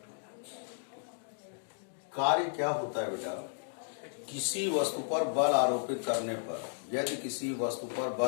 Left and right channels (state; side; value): silent; right; digital silence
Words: कार्य क्या होता है बेटा? किसी वस्तु पर बल आरोपित करने पर, यदि किसी वस्तु पर